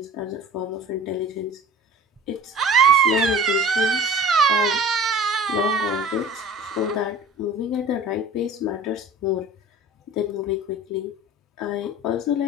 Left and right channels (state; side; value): normal; both; correlation 0.42